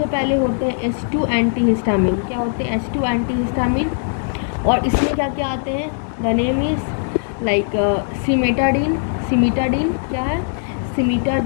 पहले होते हैं H2 एंटीहिस्टामिन। क्या होते हैं, H2 एंटीहिस्टामिन। और इसमें क्या क्या आते हैं, द नेम इज़ लाइक सिमिटाडीन क्या है,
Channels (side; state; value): right; silent; digital silence